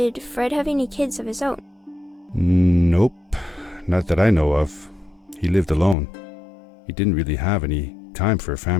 Fred have any kids of his own? Nope, not that I know of. He lived alone. He didn't really have any time for a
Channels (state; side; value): drops out; right; at 6.0 s